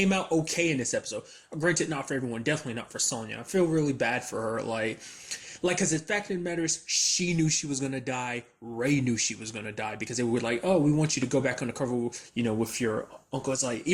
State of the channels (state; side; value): identical; both; correlation 1.00